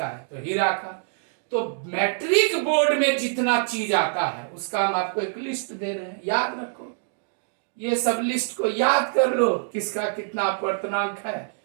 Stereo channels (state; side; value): silent; left; digital silence